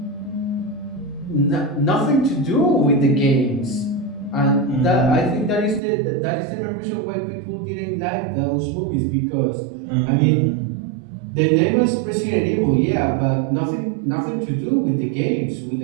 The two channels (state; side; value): drops out; left; at 5.8 s